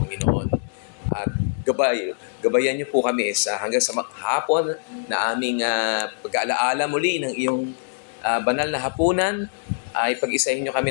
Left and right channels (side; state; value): right; silent; digital silence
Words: At gabayan niyo po kami hanggang sa maghapon na aming pag-aalaala muli ng iyong banal na hapunan, ay pag-isahin nyo